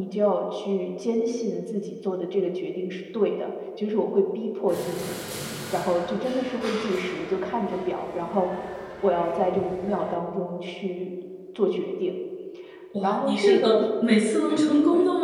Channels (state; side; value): identical; both; correlation 1.00